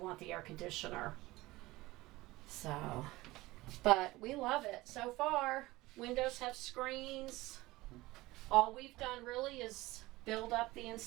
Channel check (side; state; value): left; quieter; 19.5 dB